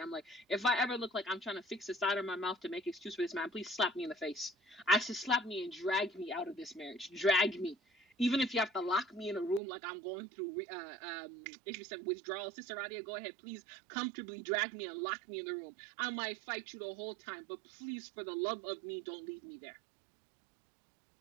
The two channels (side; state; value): left; drops out; at 9.6 s